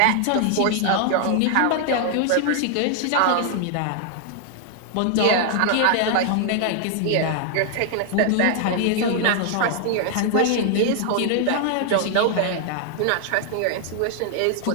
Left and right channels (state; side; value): different; both; correlation 0.00